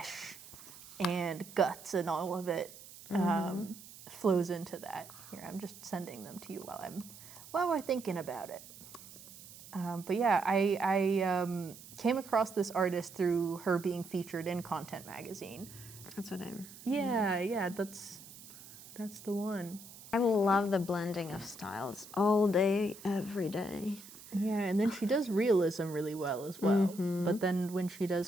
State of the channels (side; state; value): right; noise; hiss, 17 dB below the sound